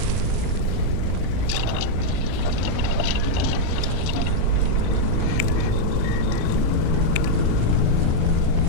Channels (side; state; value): both; different; correlation -0.02